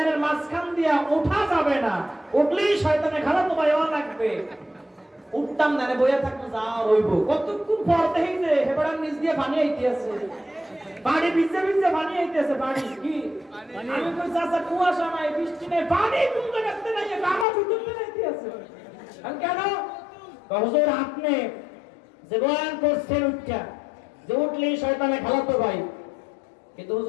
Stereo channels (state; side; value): drops out; right; at 17.4 s